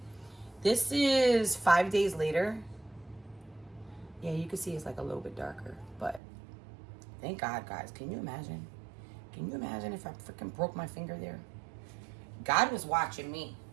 is 5 days later. Yeah, you can see it's like a little bit darker, but thank God, guys. Can you imagine? Can you imagine if I freaking broke my finger there? God was watching me.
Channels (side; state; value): left; drops out; at 6.2 s